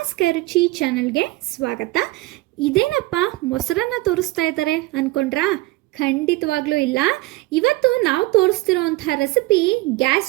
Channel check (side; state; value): left; quieter; 20.1 dB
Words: ಕೈರುಚಿ ಚಾನಲ್ಗೆ ಸ್ವಾಗತ. ಇದೇನಪ್ಪ ಮೊಸರನ್ನ ತೋರಿಸ್ತಾ ಇದ್ದಾರೆ ಅಂದ್ಕೊಂಡ್ರಾ? ಖಂಡಿತವಾಗ್ಲೂ ಇಲ್ಲ. ಇವತ್ತು ನಾವು ತೋರಿಸ್ತಿರೋಂಥ ರೆಸಿಪಿ